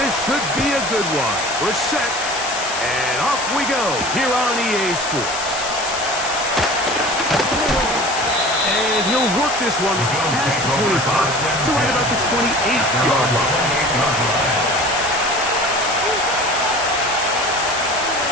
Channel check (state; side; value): noise; left; hiss, 7 dB below the sound